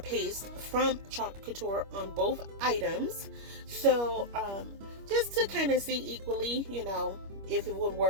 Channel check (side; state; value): left; late; 25 ms